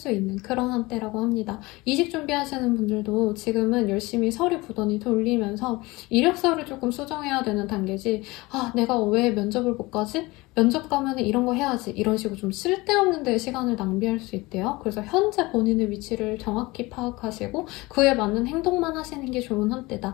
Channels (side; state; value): right; quieter; 22.1 dB